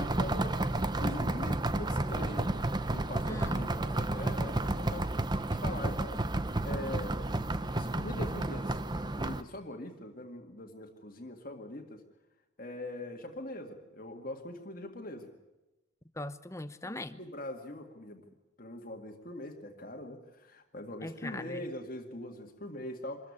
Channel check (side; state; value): both; normal; correlation 0.67